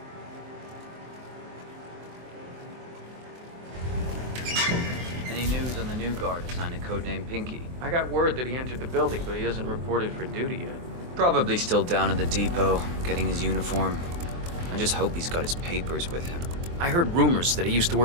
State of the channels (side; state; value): left; late; 23 ms